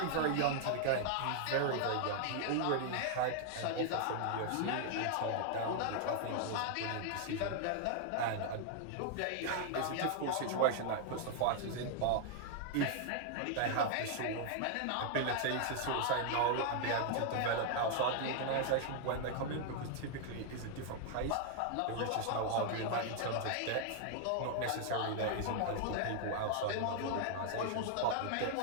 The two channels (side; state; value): both; different; correlation 0.00